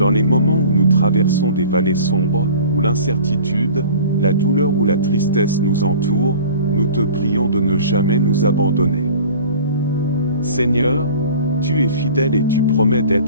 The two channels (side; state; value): both; inverted; correlation -0.43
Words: les moments où nous traversons des vallées sombres, où l'incertitude, la douleur ou la tristesse nous entourent, nous te prions de ne jamais nous abandonner. Seigneur, tu es fidèle et tu promets